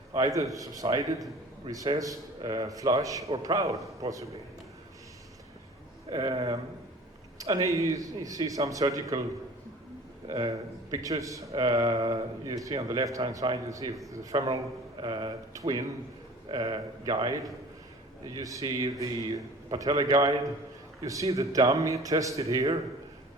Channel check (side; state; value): both; normal; correlation 0.45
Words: either subsided, recessed, flush, or proud, possibly. And here you see some surgical pictures. You see on the left-hand side, you see the femoral twin guide. You see the patella guide. You see the dummy tested here,